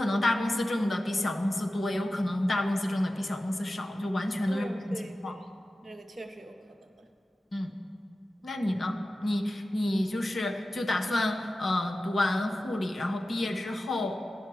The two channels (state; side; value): normal; both; correlation 0.94